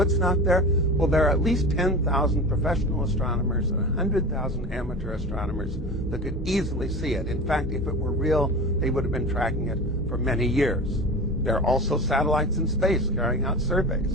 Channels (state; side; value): normal; both; correlation 0.32